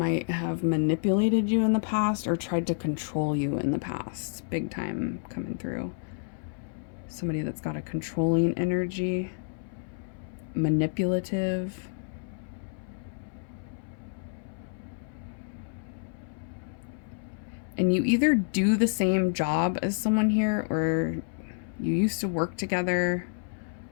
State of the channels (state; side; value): silent; right; 58 dB below the other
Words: have manipulated you in the past or tried to control you in the past. Big time coming through. Somebody that's got a controlling energy. Manipulative. And you either do the same job as someone here, or you used to work together,